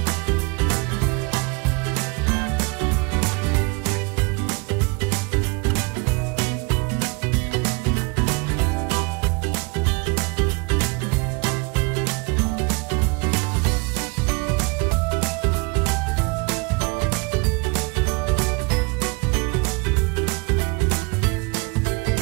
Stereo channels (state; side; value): quieter; left; 29.0 dB